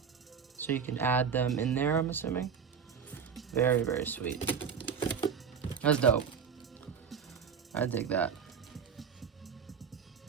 So you can add them in there, I'm assuming. Very, very sweet. That's dope. I dig that.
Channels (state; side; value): quieter; left; 6.8 dB